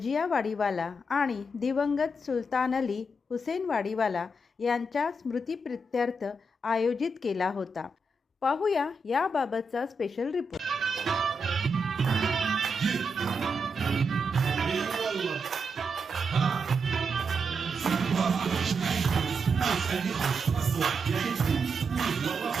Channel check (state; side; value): normal; both; correlation 0.84